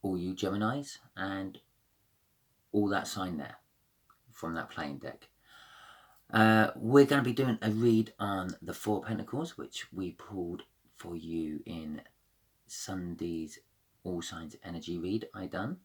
all you Geminis and all that sign there from that playing deck. We're going to be doing a read on the Four of Pentacles, which we pulled for you in Sunday's All Signs Energy read I done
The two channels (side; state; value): both; identical; correlation 1.00